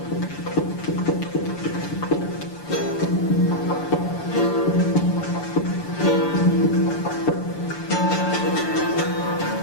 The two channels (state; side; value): late; right; 6.9 ms